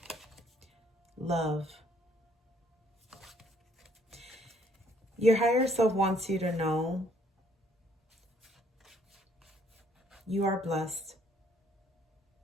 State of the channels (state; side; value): normal; both; correlation 0.65